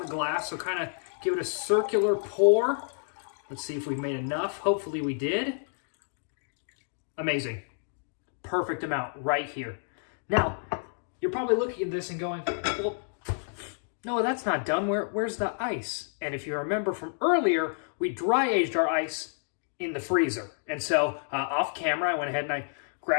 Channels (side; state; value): right; silent; digital silence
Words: the glass, so kind of give it a circular pour. Let's see if we made enough. Hopefully we did. Amazing. Perfect amount right here. Now, you're probably looking at this and going, well, no, that's not done. Where's the ice? And if you remember from earlier, we dry aged our ice in the freezer. And so off camera, I went ahead and I